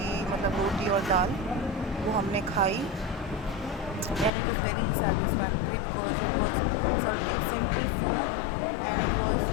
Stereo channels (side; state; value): right; drops out; at 4.3 s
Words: मतलब रोटी और दाल, वो हमने खाई, and it was very satisfactory because it was something simple food and it was